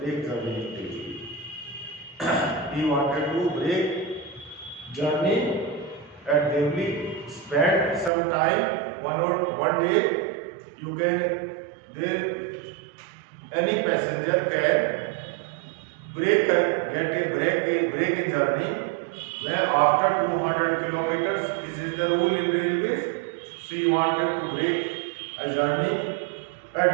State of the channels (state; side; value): drops out; left; at 8.1 s